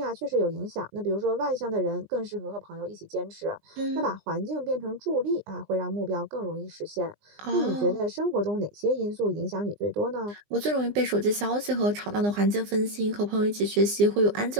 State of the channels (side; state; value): left; late; 20 ms